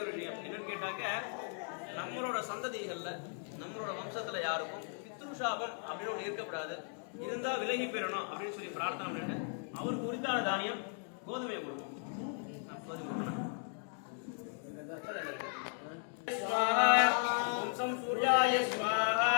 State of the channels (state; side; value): silent; right; 53 dB below the other